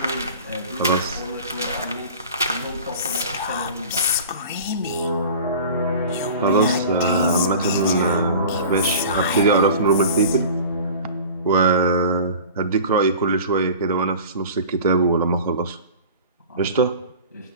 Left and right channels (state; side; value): inverted; both; correlation -0.40